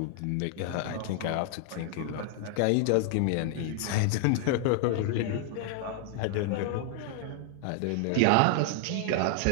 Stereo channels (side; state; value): both; different; correlation -0.01